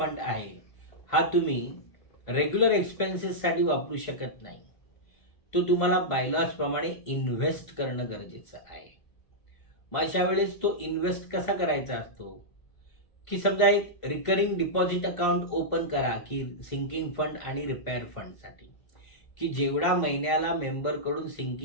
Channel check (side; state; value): right; late; 1.5 ms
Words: आहे हा तुम्ही रेग्युलर एक्सपेन्सेससाठी वापरू शकत नाही. तो तुम्हाला बायलॉजप्रमाणे इन्व्हेस्ट करणं गरजेचं आहे. मग अशा वेळेस तो इन्व्हेस्ट कसा करायचा असतो की समजा एक रिकरिंग डिपॉझिट अकाउंट ओपन करा की सिंकिंग फंड आणि रिपेअर फंडसाठी, की जेवढा महिन्याला मेंबरकडून